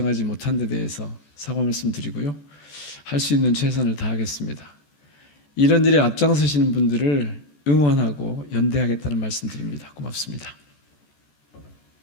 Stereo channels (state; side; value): late; right; 14 ms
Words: 못한 데 대해서 사과 말씀드리고요. 할 수 있는 최선을 다하겠습니다. 이런 일에 앞장서시는 분들을 응원하고 연대하겠다는 말씀드립니다. 고맙습니다.